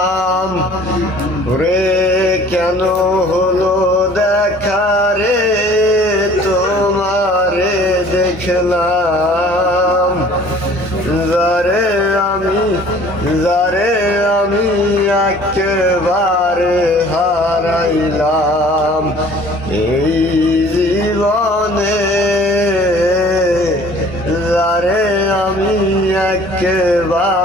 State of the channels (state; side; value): normal; both; correlation 0.51